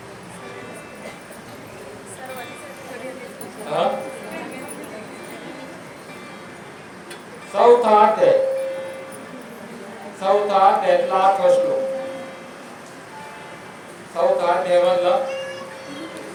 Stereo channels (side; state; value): both; identical; correlation 1.00